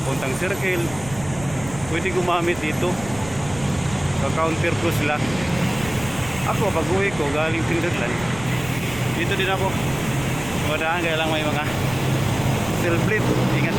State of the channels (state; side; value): noise; right; rumble, 14 dB below the sound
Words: papuntang Circle. Pwede gumamit dito. Ka-counter ko sila. Ako pag uwi ko galing Timberland, dito din ako madaan, kaya lang may mga steel plate. Ingat